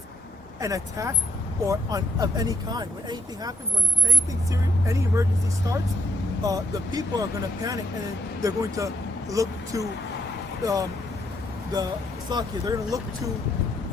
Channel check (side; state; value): both; normal; correlation 0.76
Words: an attack of any kind. When anything happens, when anything serious, any emergency starts, the people are going to panic, and then they're going to look to they're going to look to